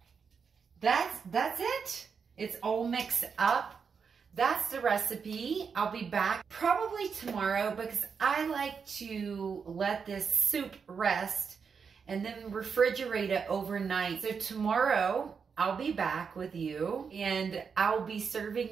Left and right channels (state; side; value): quieter; left; 6.0 dB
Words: that's it. It's all mixed up. That's the recipe. I'll be back probably tomorrow because I like to let this soup rest and then refrigerate it overnight. So tomorrow I'll be back with you and I'll be